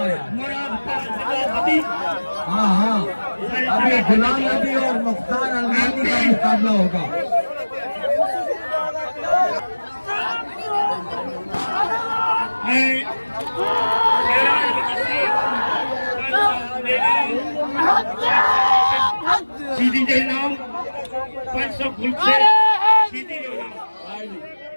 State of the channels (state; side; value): inverted; both; correlation -1.00